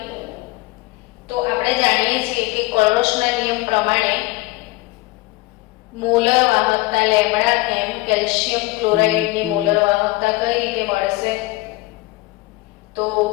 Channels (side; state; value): right; quieter; 20.3 dB